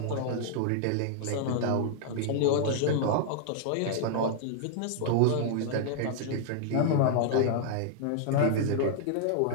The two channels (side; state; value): both; different; correlation -0.01